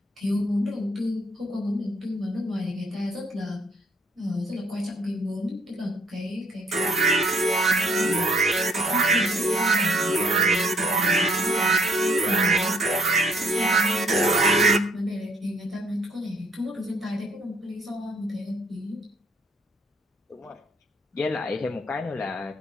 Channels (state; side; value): normal; both; correlation 0.65